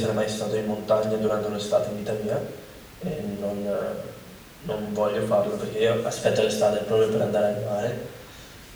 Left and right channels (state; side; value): identical; both; correlation 1.00